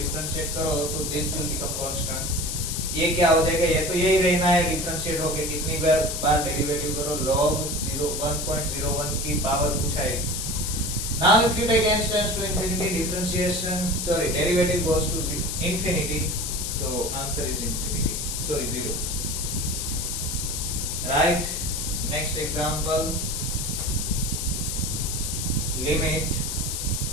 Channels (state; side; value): noise; left; hiss, 3 dB below the sound